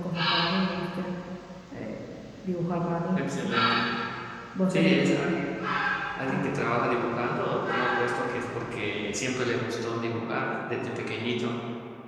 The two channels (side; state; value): both; identical; correlation 1.00